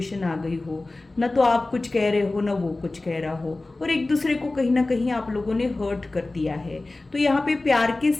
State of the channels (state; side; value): quieter; right; 3.1 dB